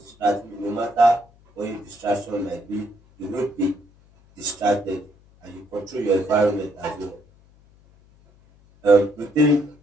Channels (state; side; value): noise; left; hum, 29 dB below the sound